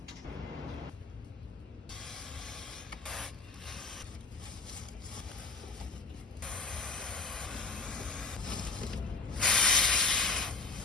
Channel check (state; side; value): quieter; right; 4.0 dB